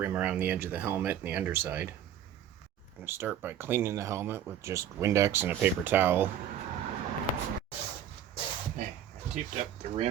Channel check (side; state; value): left; quieter; 9.9 dB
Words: around the edge of the helmet and the underside. I'm gonna start by cleaning the helmet with just Windex and a paper towel. Okay, I taped up the